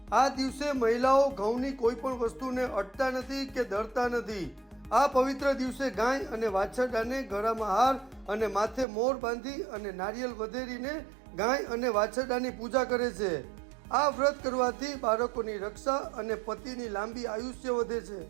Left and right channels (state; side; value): drops out; left; at 8.8 s